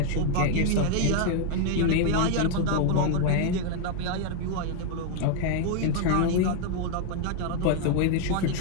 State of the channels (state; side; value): different; both; correlation 0.01